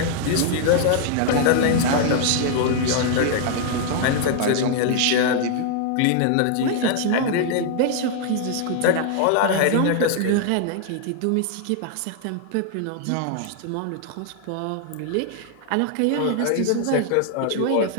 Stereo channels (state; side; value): different; both; correlation 0.00